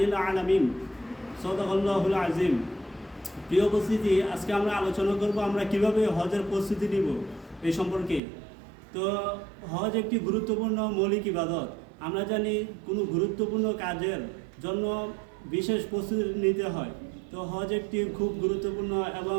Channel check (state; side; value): drops out; left; at 8.2 s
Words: العالمين. সাদাকাল্লাহুল আযীম। প্রিয় উপস্থিতি, আজকে আমরা আলোচনা করব আমরা কিভাবে হজের প্রস্তুতি নিব এই সম্পর্কে। তো হজ একটি গুরুত্বপূর্ণ মৌলিক ইবাদত। আমরা জানি কোনো গুরুত্বপূর্ণ কাজের জন্য বিশেষ প্রস্তুতি নিতে হয়। তো হজ একটি খুব গুরুত্বপূর্ণ এবং